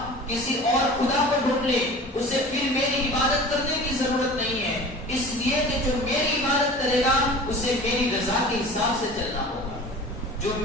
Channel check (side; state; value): both; normal; correlation 0.39